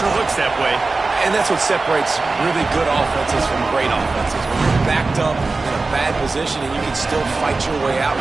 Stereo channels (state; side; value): quieter; left; 3.7 dB